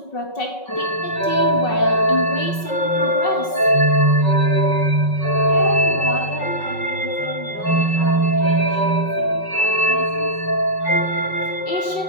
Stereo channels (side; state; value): right; late; 5.3 ms